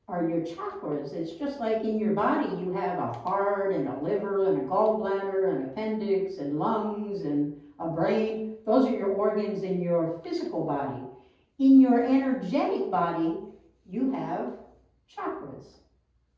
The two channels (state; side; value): identical; both; correlation 1.00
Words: are your chakras. It's just like in your body you have a heart and a liver and a gallbladder and appendix and lungs and a brain. Those are your organs in your physical body. In your energetic body, you have chakras.